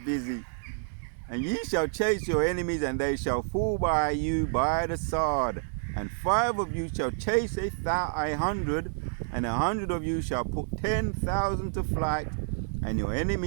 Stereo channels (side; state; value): left; silent; 59 dB below the other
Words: busy. And ye shall chase your enemies, and they shall fall by you by the sword. And 5 of you shall chase 100, and 100 of you shall put 10,000 to flight, and your